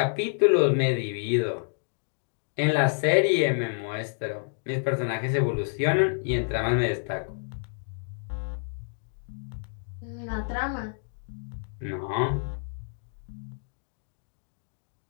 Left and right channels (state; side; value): silent; right; digital silence